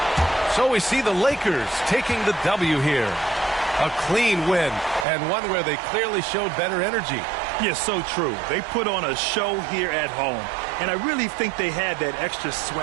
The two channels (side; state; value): left; drops out; at 5.1 s